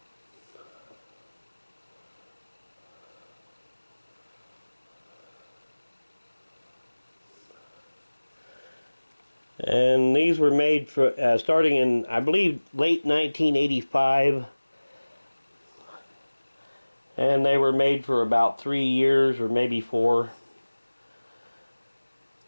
And these were made for starting in, I believe, late 1985. And they were made for about 3 years or maybe 4.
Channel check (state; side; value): inverted; both; correlation -1.00